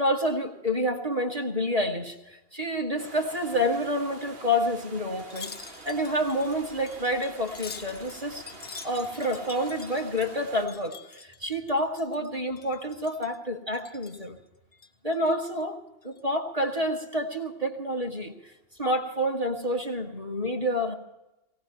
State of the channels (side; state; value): left; late; 2.8 ms